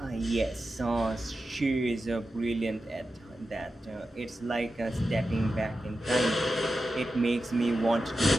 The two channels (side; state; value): both; normal; correlation 0.91